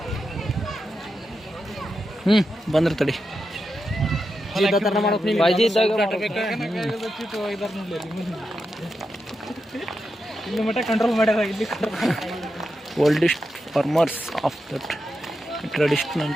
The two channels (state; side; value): normal; both; correlation 0.88